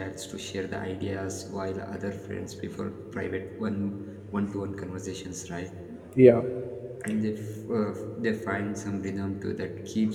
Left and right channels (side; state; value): both; identical; correlation 1.00